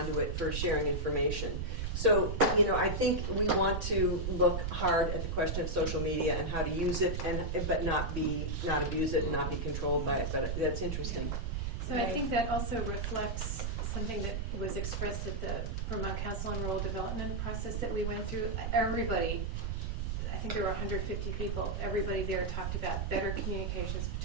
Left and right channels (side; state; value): right; noise; rumble, 1 dB below the sound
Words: for sharing information. So, I think we want to look hard at the question of social media and how to use it, but not abuse it and not be controlled by it. But that's interesting. So I think that also reflects something that was expressed at the Vermont Council on Rural Development process that we went through. Everybody, I think there were 150 people, everybody there talked about better communications